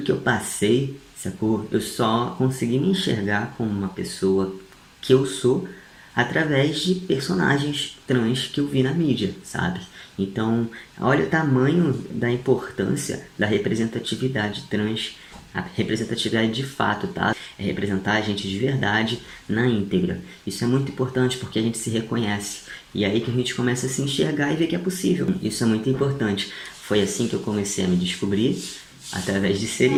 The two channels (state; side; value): identical; both; correlation 1.00